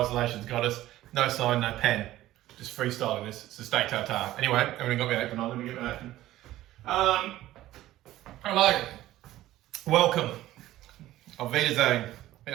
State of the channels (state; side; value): quieter; left; 15.0 dB